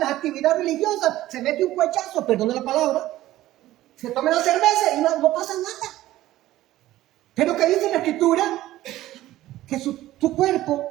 actividades religiosas, se mete un cuechazo, perdone la palabra, se tome la cerveza y no pasa nada. Pero que dice la Escritura que tu cuerpo,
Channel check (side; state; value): left; quieter; 15.2 dB